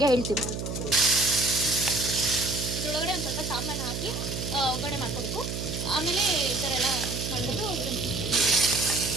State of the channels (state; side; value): noise; right; hum, 5 dB below the sound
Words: ಹೇಳ್ತೀವಿ. ಇದರೊಳಗಡೆ ಒಂದು ಸ್ವಲ್ಪ ಸಾಂಬಾರನ್ನ ಹಾಕಿ ಒಗ್ಗರಣೆ ಮಾಡ್ಕೋಬೇಕು. ಆಮೇಲೆ ಈ ಥರ ಎಲ್ಲ ಮಿಕ್ಸ್ ಮಾಡಿಕೊಂಡು